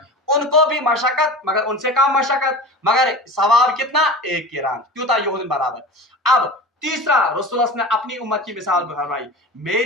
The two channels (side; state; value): both; normal; correlation 0.33